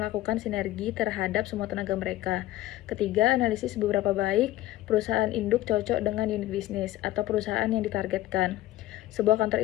sinergi terhadap semua tenaga mereka. Ketiga, analisis seberapa baik perusahaan induk cocok dengan unit bisnis atau perusahaan yang ditargetkan. Sebuah kantor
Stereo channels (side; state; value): right; quieter; 15.6 dB